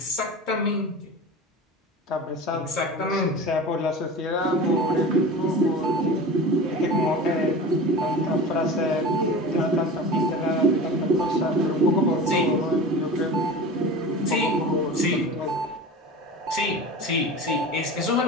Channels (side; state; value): both; normal; correlation 0.33